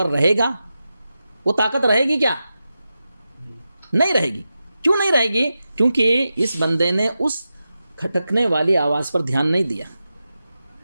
رہے گا، وہ طاقت رہے گی؟ کیا نہیں رہے گی؟ کیوں نہیں رہے گی؟ کیونکہ اس بندے نے اس کھٹکنے والی آواز پر دھیان نہیں دیا،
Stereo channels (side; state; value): both; inverted; correlation -0.91